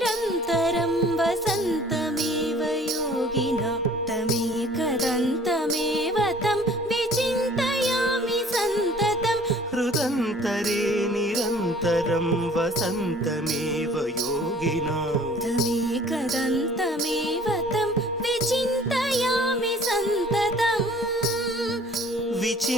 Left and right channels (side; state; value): both; normal; correlation 0.52